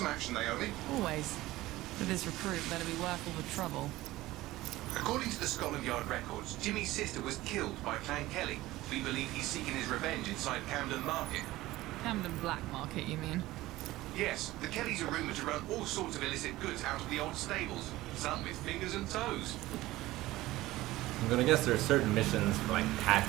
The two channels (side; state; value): left; quieter; 17.4 dB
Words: action, Naomi? Always. But this recruit better be worth all the trouble. According to the Scotland Yard records, Jimmy's sister was killed by Clan Kelly. We believe he's seeking his revenge inside Camden Market. Camden Black Market, you mean? Yes, the Kellys are rumoured to run all sorts of illicit goods out of the old stables, some with fingers and toes. I'm gonna guess there are certain missions for like